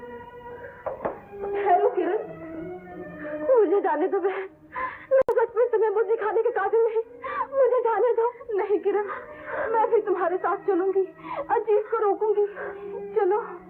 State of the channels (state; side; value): identical; both; correlation 1.00